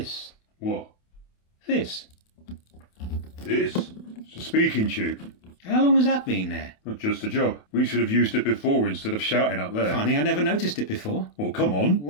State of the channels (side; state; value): right; late; 28 ms